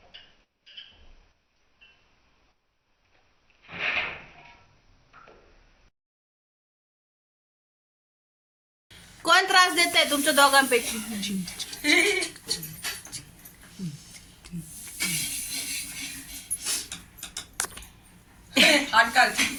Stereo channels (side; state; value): both; identical; correlation 1.00